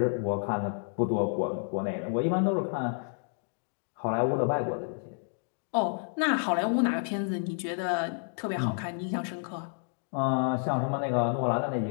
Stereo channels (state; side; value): silent; right; 58 dB below the other